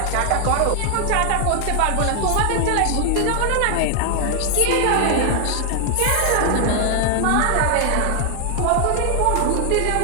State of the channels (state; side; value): different; both; correlation 0.00